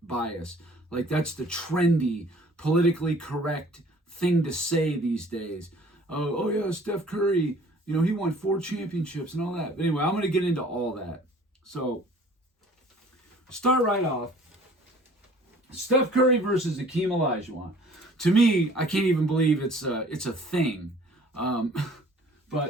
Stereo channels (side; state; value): both; normal; correlation 0.52